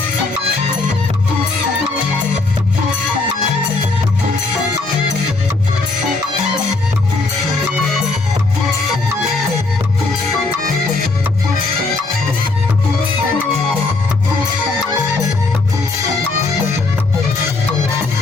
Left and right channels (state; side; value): quieter; right; 3.5 dB